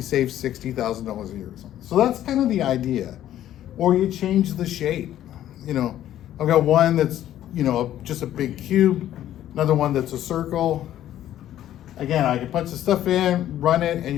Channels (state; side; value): quieter; right; 12.2 dB